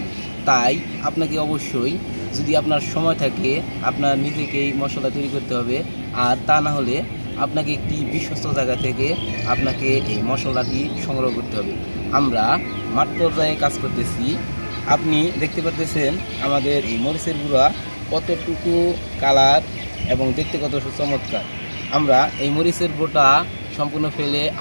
তাই আপনাকে অবশ্যই, যদি আপনার সময় থাকে, আপনার নিজেকেই মশলা তৈরি করতে হবে। আর তা না হলে আপনাকে একটি বিশ্বস্ত জায়গা থেকে আপনাকে এই মশলাটি সংগ্রহ করতে হবে। আমরা মাঠ পর্যায়ে কাজ করতেছি। আপনি দেখতে পাচ্ছেন আমাদের এই মরিচের গুঁড়া কতটুকু কালার এবং দেখতে কত চমৎকার। আমরা এই মরিচের বোটা সম্পূর্ণ ফেলে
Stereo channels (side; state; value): both; inverted; correlation -1.00